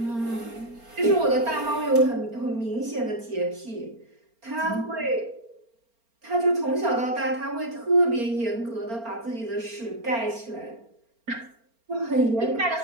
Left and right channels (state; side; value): late; left; 4.4 ms